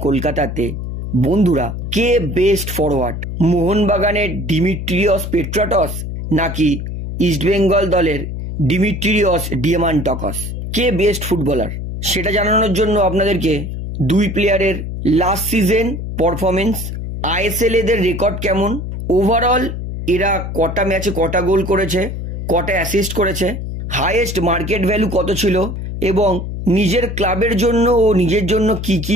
কলকাতাতে। বন্ধুরা, কে বেস্ট ফরওয়ার্ড, মোহনবাগানের ডিমিট্রিয়স পেট্রাটস নাকি ইস্টবেঙ্গল দলের ডিমিট্রিয়স ডিয়ামান্টকস? কে বেস্ট ফুটবলার সেটা জানানোর জন্য আপনাদেরকে দুই প্লেয়ারের লাস্ট সিজন পারফরমেন্স, আইএসএল এদের রেকর্ড কেমন, ওভারঅল এরা কটা ম্যাচে কটা গোল করেছে, কটা অ্যাসিস্ট করেছে, হাইয়েস্ট মার্কেট ভ্যালু কত ছিল এবং নিজের ক্লাবের জন্য ও নিজের জন্য কি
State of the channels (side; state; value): left; noise; hum, 6 dB below the sound